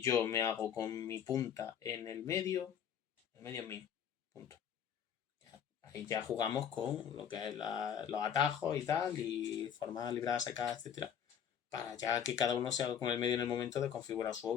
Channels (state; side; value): quieter; right; 8.4 dB